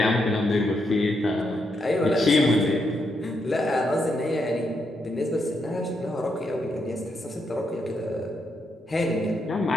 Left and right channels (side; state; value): both; normal; correlation 0.80